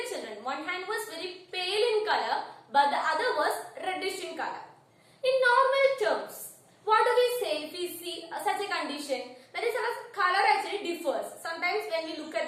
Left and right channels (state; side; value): identical; both; correlation 1.00